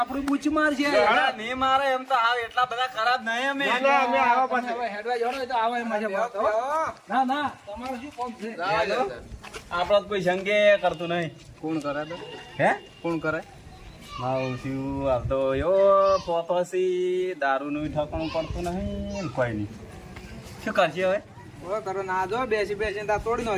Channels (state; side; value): identical; both; correlation 1.00